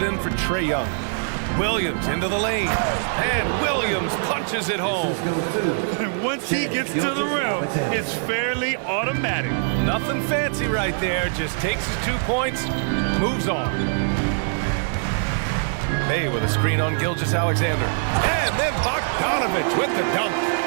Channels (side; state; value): left; silent; digital silence